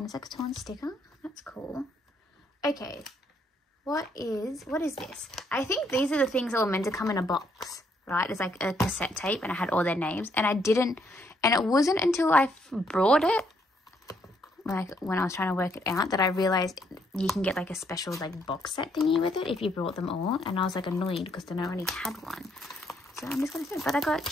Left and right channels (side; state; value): both; normal; correlation 0.71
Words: It's like a torn sticker. That's cool. Okay, what is this? I think these are the things that were meant to come in a box, right? It's like a cassette tape and I had all their names and I didn't, and it wasn't until I brought it, like when I was trying to work it out, that I realized you can get like a special like box set thingy with it if you brought them all. And I was like annoyed because then I already had one. So I'm just gonna say, but I got